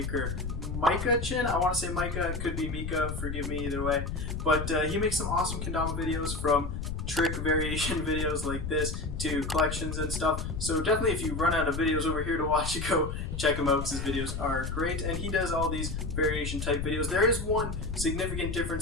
Micah Chin. I want to say Micah, it could be Mika, forgive me either way. But he makes some awesome kendama videos, from trick variation videos like this to collections and stuff. So definitely if you run out of videos over here to watch, you go check him out because his videos are great. And he does all these variation type videos. There is one significant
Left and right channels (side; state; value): left; noise; rumble, 5 dB below the sound